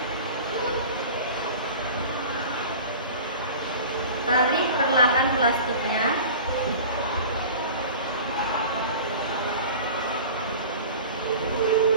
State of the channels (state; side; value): inverted; both; correlation -0.38